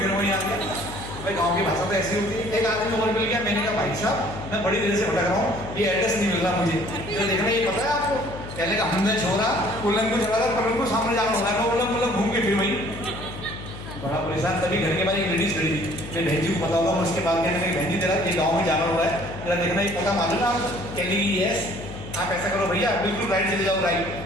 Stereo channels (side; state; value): left; noise; hum, 12 dB below the sound